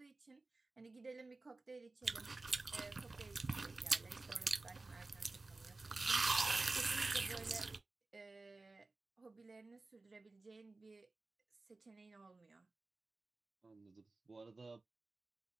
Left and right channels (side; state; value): left; quieter; 3.4 dB